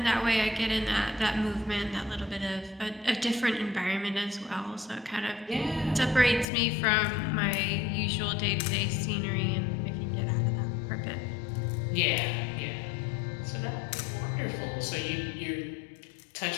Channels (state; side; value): drops out; right; at 6.5 s